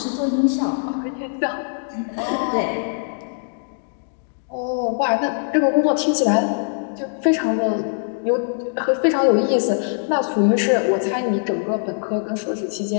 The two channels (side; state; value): right; silent; digital silence